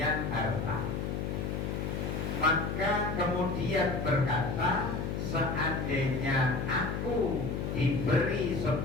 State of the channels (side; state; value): left; noise; hum, 2 dB below the sound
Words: harta, maka kemudian berkata, seandainya aku diberi